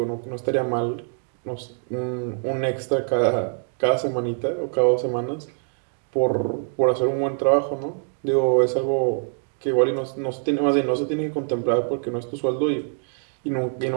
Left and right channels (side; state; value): left; silent; digital silence